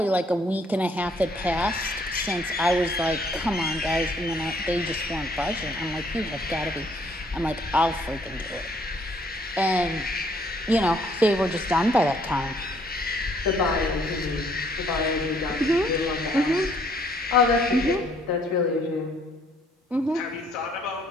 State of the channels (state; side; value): normal; both; correlation 0.65